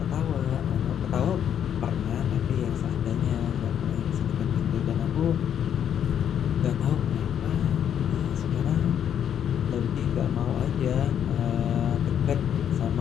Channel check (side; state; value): right; quieter; 9.1 dB